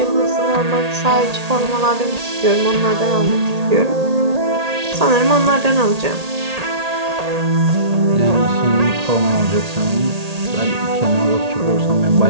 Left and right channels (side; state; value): left; late; 1.8 ms